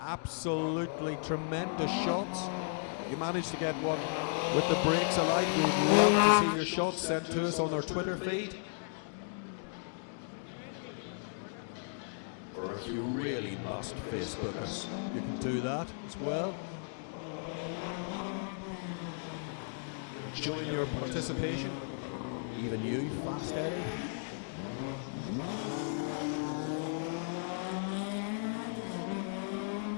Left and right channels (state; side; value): silent; right; digital silence